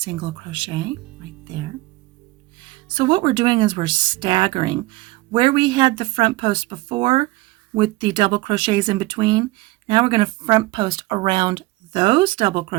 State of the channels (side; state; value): left; quieter; 19.9 dB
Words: crochet right there. So what we're doing is we're staggering. Where we had the front post before with the double crochets in between, now we're going to front post around those double